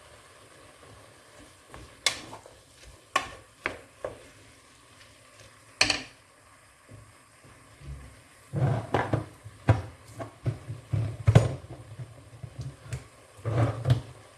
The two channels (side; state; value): both; identical; correlation 1.00